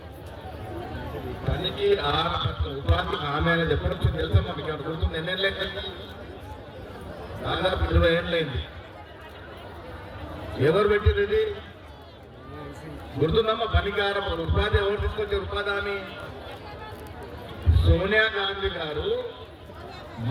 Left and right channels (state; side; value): identical; both; correlation 1.00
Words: పనికి ఉపాధి హామీ అనేది ఎప్పటి నుంచి తెలుసా మనకి? అక్కడ గుర్తుంది, ఎన్నేళ్ళైంది? దాదాపు 20 ఏళ్ళైంది. ఎవరు పెట్టింది ఇది? గుర్తుందమ్మా? పనికారం ఉపాధి ఎవరు తీసుకొచ్చారు? ఉపాధి హామీ సోనియా గాంధీ గారు,